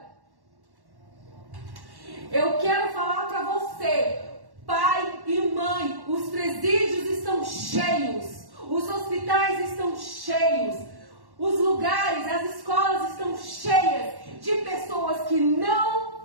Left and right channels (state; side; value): late; left; 1.1 ms